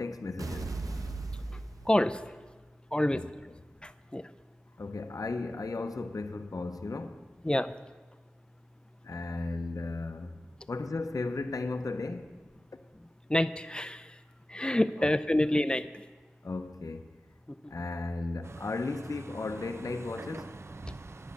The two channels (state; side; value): normal; both; correlation 0.94